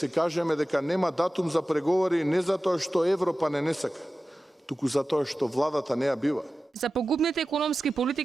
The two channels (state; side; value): normal; both; correlation 0.95